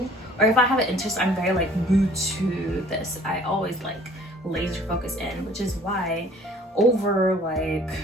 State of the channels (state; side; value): normal; both; correlation 0.53